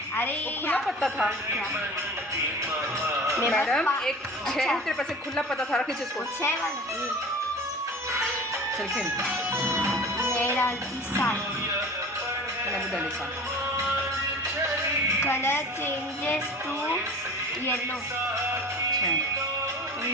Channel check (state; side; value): normal; both; correlation 0.39